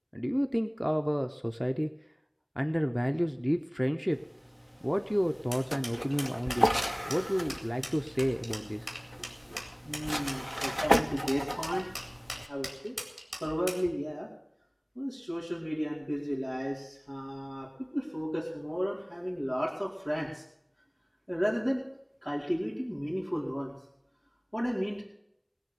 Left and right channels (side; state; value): both; identical; correlation 1.00